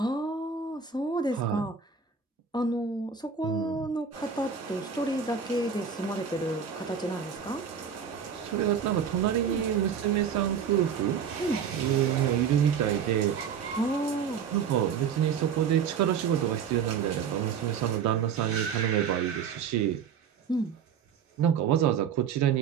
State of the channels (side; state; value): left; quieter; 7.1 dB